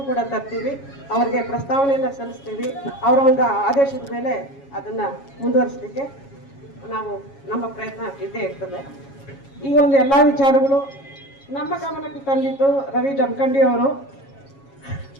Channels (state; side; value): late; right; 7.3 ms